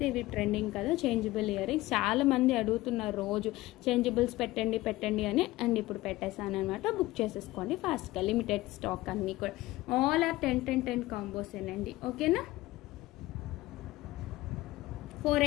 ఇవి ట్రెండింగ్ కదా చేంజబుల్ ఇయర్ రింగ్స్. చాలా మంది అడుగుతున్నారు రోజు చేంజబుల్స్ పెట్టండి అని. అండ్ ఇప్పుడు పెట్టేసాను అనమాట. బుక్ చేసేసుకోండి ఫాస్ట్గా. లిమిటెడ్ స్టాక్ అన్నీ కూడా. ఆల్ ఆర్ 10 కాంబోస్ ఏనండి. ఓకేనా,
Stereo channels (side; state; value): right; quieter; 18.2 dB